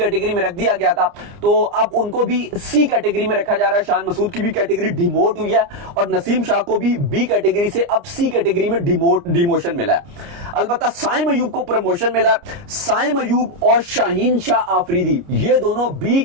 में रख दिया गया था, तो अब उनको भी सी कैटेगरी में रखा जा रहा है। शान मसूद की भी कैटेगरी डिमोट हुई है और नसीम शाह को भी बी कैटेगरी से अब सी कैटेगरी में डिमोशन मिला है। अलबत्ता साइम अयूब को प्रमोशन मिला है। साइम अयूब और शाहीन शाह आफरीदी ये दोनों बी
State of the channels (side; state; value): left; late; 29 ms